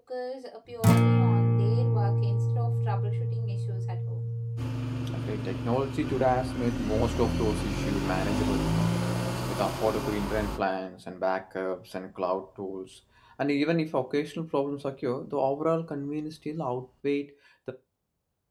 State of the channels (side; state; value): both; identical; correlation 1.00